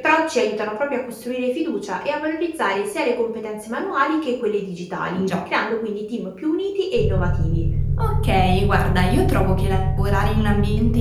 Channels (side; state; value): both; identical; correlation 1.00